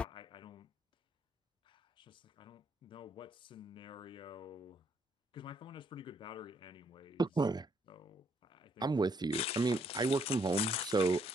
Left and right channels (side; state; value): both; normal; correlation 0.71